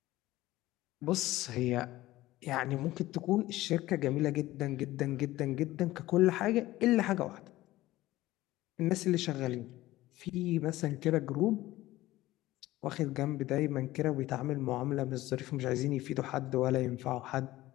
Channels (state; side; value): quieter; right; 16.8 dB